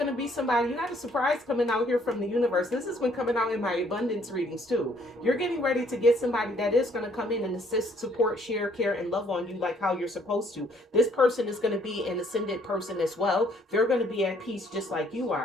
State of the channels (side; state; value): both; normal; correlation 0.64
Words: to be somebody. You got a surprise coming out here from the universe. This has been coming out in my abundance readings too. You're getting ready to get somebody that is going to come in and assist, support, share, care, and love on you like how you're supposed to. This person is going to be an ascended person as well. They're going to be at peace just like you